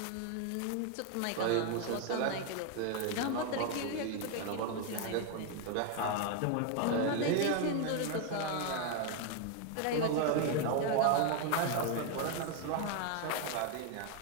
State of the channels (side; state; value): both; different; correlation 0.01